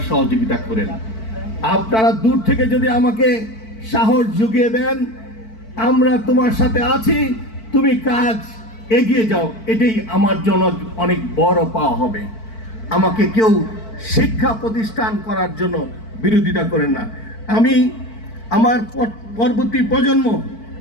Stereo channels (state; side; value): late; right; 4.5 ms